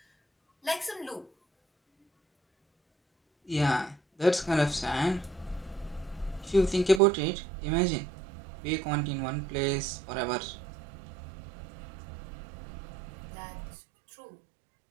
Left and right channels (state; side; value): drops out; left; at 7.0 s